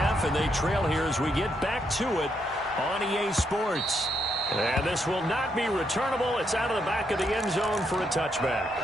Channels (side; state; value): both; normal; correlation 0.77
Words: and they trail here as we get back to it on EA Sports. And this will not be returnable. It's out of the back of the end zone for a touchback.